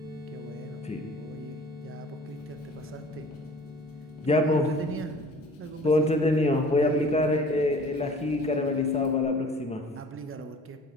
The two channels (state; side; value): normal; both; correlation 0.48